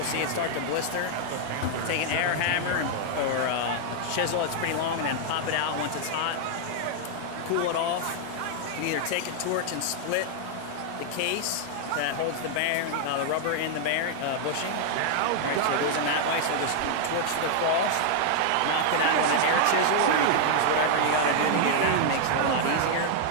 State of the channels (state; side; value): different; both; correlation -0.01